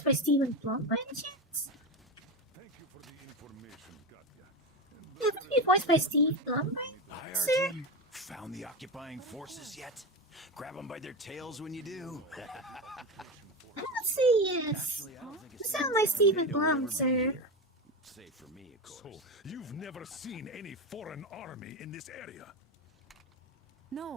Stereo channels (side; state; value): both; normal; correlation 0.18